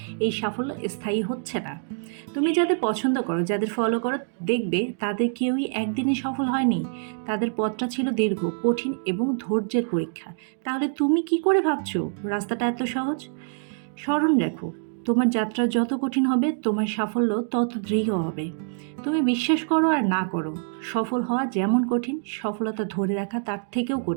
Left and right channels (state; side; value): silent; left; digital silence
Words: এই সাফল্য স্থায়ী হচ্ছে না। তুমি যাদের পছন্দ করো, যাদের ফলো করো, দেখবে তাদের কেউই একদিনে সফল হয়নি। তাদের পথটা ছিল দীর্ঘ, কঠিন এবং ধৈর্যের পরীক্ষা। তাহলে তুমি কি করে ভাবছো রাস্তাটা এত সহজ? স্মরণ রাখো, তোমার যাত্রা যত কঠিন হবে তোমার সাফল্য তত দৃঢ় হবে। তুমি বিশ্বাস করো আর না করো, সফল হওয়া যেমন কঠিন, সফলতা ধরে রাখা তার থেকেও